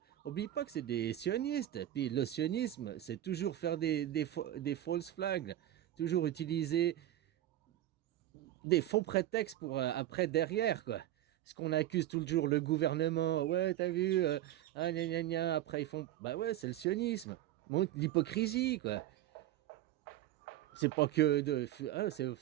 Oublie pas que c'est des sionistes. Puis le sionisme, c'est toujours faire des false flags, toujours utiliser des faux prétextes pour après derrière, quoi. Parce qu'on accuse toujours le gouvernement. Ouais, t'as vu, ah, gna, gna, gna. Après ils font, bah ouais, c'est le sionisme. Montre l'hypocrisie, quoi. C'est pas que de, hein,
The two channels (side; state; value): left; quieter; 13.1 dB